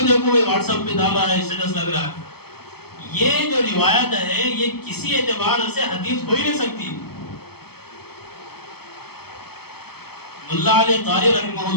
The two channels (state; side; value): late; right; 0.96 ms